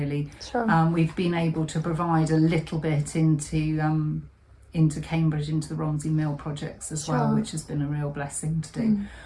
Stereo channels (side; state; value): both; identical; correlation 1.00